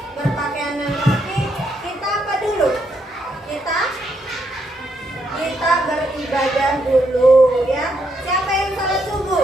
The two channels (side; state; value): both; normal; correlation 0.77